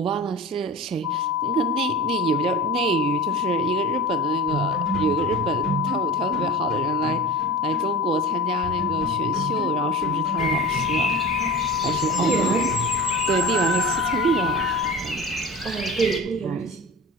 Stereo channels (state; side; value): normal; both; correlation 0.33